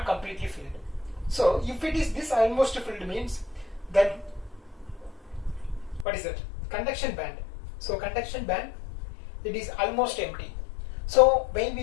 completely filled. So if it is this almost filled means, then what is it? Conduction band. So conduction band, it is almost empty. So when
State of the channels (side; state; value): right; drops out; at 6.1 s